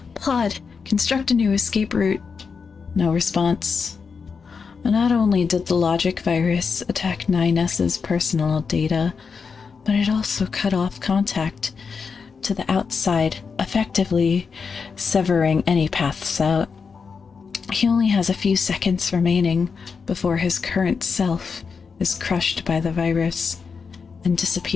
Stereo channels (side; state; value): right; quieter; 5.5 dB